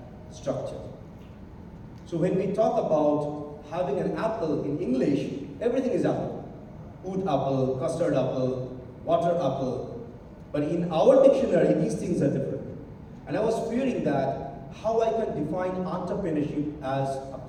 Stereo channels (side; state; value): both; identical; correlation 1.00